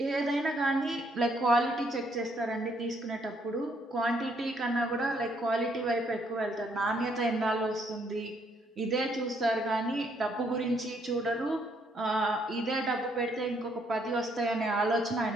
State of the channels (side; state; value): both; normal; correlation 0.70